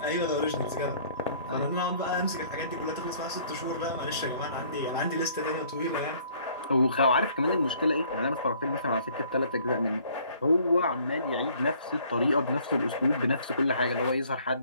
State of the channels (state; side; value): inverted; both; correlation -0.58